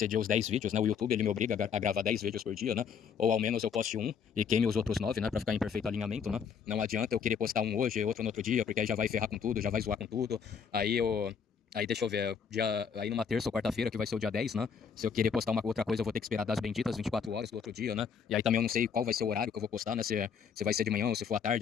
os 10 vídeos, né? O YouTube, ele me obriga a gravar 10 vídeos por dia, né? Ou ao menos eu poste um e queime os outros 9, né? Pra ficar em perfeito alinhamento, né? Não adianta eu querer postar um hoje e outro no outro dia, porque aí já vai ferrar com tudo, já vai zoar com tudo. Aí eu... Aí deixa eu ver, aí numa terça ou quarta-feira, que vai ser o dia 10, né? Se eu querer postar uma outra coisa, eu vou ter que esperar das benditas 24 horas do outro dia, né? E aí também eu não sei qual vai ser o horário que eu vou postar, né? Se vai ser de manhã ou se for à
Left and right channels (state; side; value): quieter; right; 6.8 dB